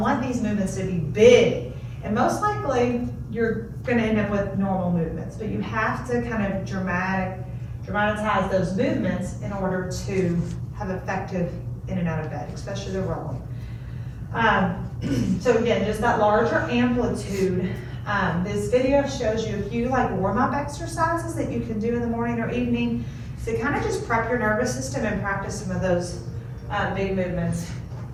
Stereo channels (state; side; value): identical; both; correlation 1.00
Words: these movements to be big. And most likely, you're gonna end up with normal movements, but you have to kind of dramatize those movements in order to have effective in and out of bed, especially the rolling. So again, just that larger amplitude. This video shows you a few warm-up exercises that you can do in the morning or evening to kind of just prep your nervous system and practice some of those big movements.